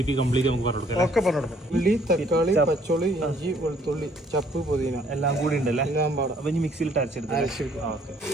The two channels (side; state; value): both; normal; correlation 0.62